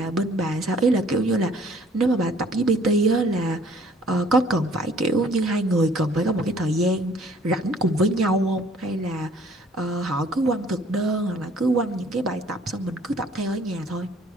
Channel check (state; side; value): normal; both; correlation 0.56